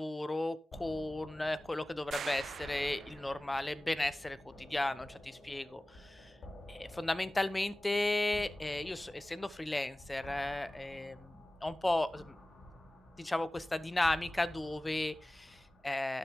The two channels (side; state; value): both; normal; correlation 0.97